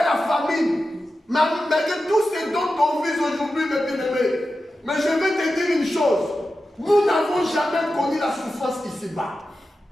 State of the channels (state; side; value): normal; both; correlation 0.92